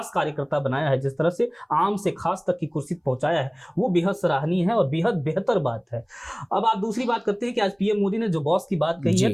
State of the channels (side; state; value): both; identical; correlation 1.00